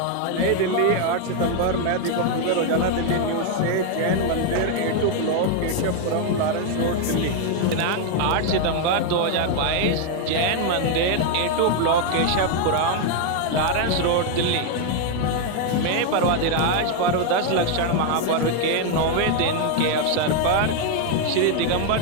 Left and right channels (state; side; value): different; both; correlation 0.01